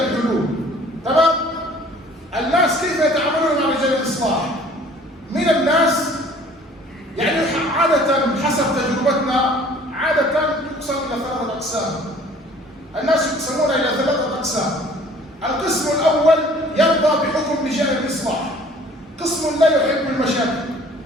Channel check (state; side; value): normal; both; correlation 0.52